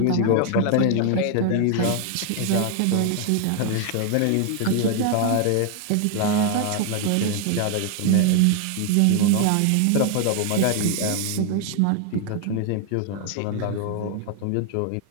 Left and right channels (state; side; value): different; both; correlation 0.00